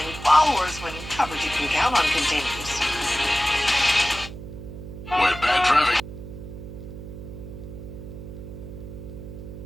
followers when coverage you can count on continues. When bad traffic.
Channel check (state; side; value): noise; right; hum, 12 dB below the sound